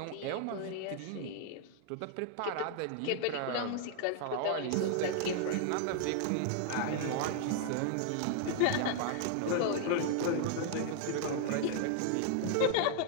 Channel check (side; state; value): both; different; correlation 0.00